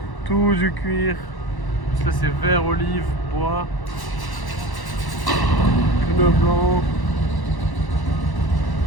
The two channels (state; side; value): late; right; 1.1 ms